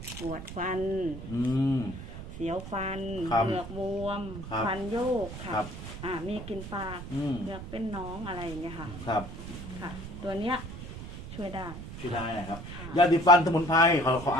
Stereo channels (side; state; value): right; noise; rumble, 10 dB below the sound